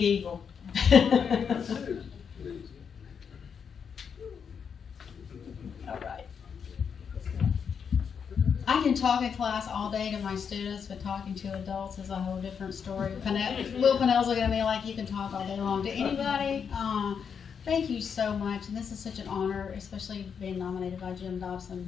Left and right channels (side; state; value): right; quieter; 6.8 dB